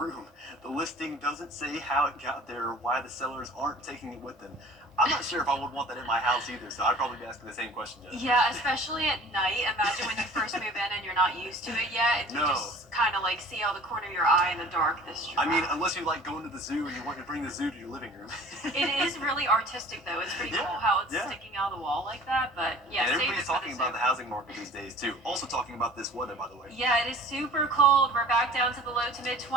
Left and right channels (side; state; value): both; normal; correlation 0.46